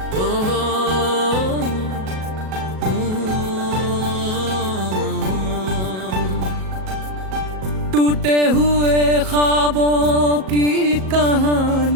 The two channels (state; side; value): late; left; 37 ms